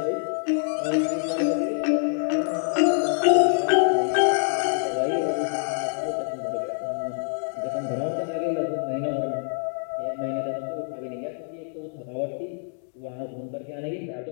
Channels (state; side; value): silent; right; 61 dB below the other